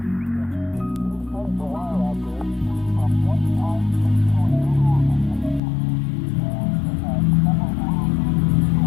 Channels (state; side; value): drops out; right; at 5.6 s